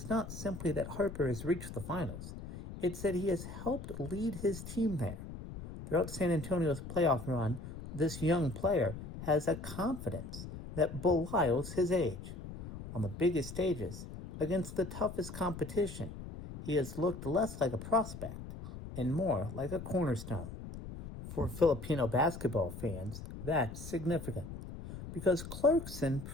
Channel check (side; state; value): left; noise; rumble, 10 dB below the sound